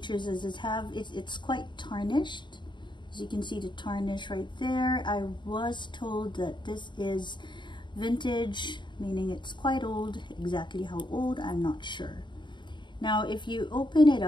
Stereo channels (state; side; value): late; right; 0.22 ms